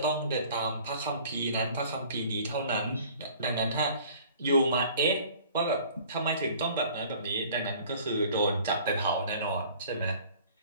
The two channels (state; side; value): inverted; both; correlation -0.50